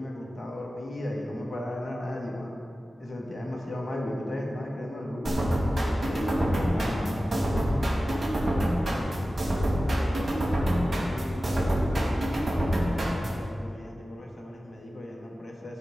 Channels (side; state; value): both; normal; correlation 0.95